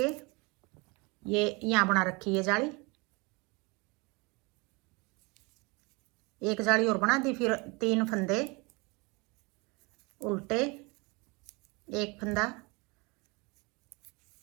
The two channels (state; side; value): quieter; left; 27.7 dB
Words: ये यहाँ बना रखी है जाली, एक जाली और बना दी, फिर 3 फंदे उल्टे, एक फंदा,